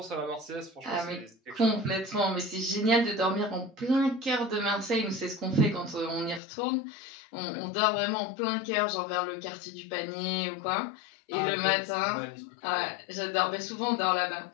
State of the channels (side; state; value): right; drops out; at 6.4 s